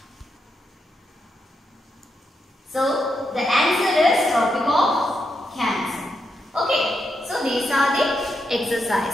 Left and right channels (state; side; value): normal; both; correlation 0.83